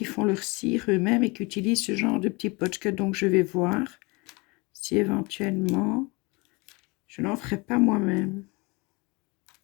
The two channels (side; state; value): right; quieter; 26.9 dB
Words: font leur cire eux-mêmes et qui utilisent ce genre de petits potchka. Donc, je vais voir si éventuellement, je n'en ferai pas moi-même.